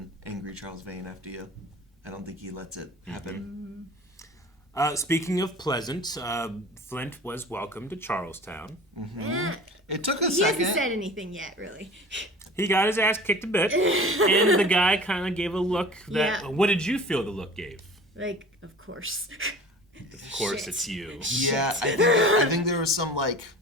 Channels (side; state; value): both; normal; correlation 0.41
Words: angry Charles Vane after you. I don't think he lets it happen. Speaking of pleasant, Flint was welcomed to Charlestown. It took a he second. He hasn't said anything yet, really. He got his ass kicked a bit, and the guy kind of gave a look that... Yeah. What did you feel the look gave? Like, of course. Of course, it's you. Yeah, I think there was some, like...